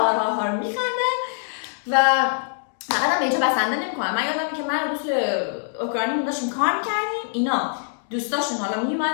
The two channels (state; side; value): silent; right; digital silence